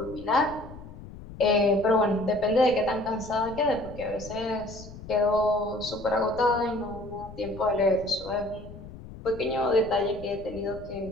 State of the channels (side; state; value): left; noise; rumble, 15 dB below the sound